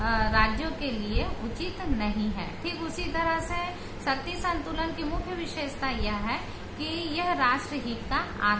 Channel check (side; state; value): both; identical; correlation 1.00